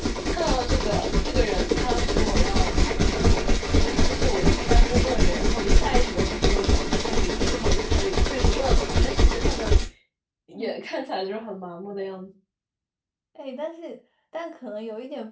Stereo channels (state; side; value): identical; both; correlation 1.00